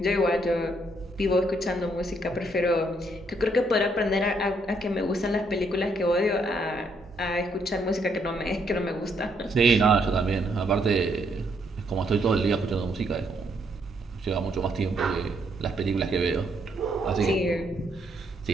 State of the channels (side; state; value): both; normal; correlation 0.73